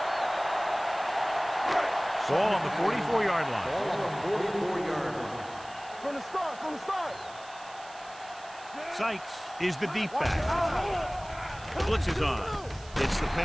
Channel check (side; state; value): right; noise; hiss, 20 dB below the sound